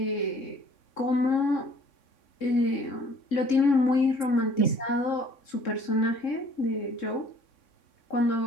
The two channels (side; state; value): right; late; 3.6 ms